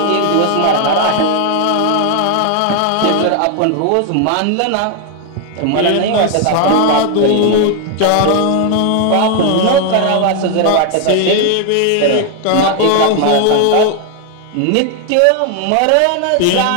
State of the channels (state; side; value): different; both; correlation 0.00